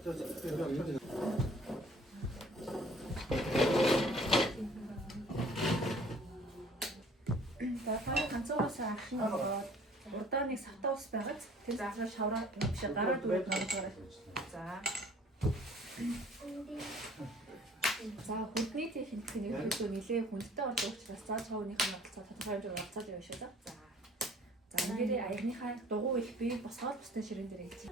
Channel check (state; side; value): normal; both; correlation 0.53